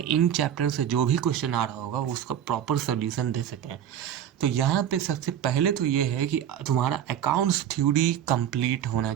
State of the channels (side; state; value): left; quieter; 9.9 dB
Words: चैप्टर से जो भी क्वेश्चन आ रहा होगा उसका प्रॉपर सोल्यूशन दे सकें। तो यहाँ पे सबसे पहले तो ये है कि तुम्हारा अकाउंट्स थ्योरी कंप्लीट होना